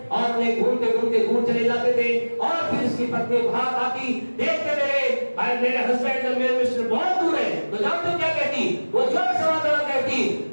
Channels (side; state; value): both; inverted; correlation -1.00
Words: और उन्हें घूमते घूमते दूर चले जाते थे, और फिर उसकी पत्नी बाहर आती, देखते मेरे हस्बैंड और मेरे मिस्टर बहुत दूर है, तो जानते क्या कहती? वो जोर से आवाज कहती,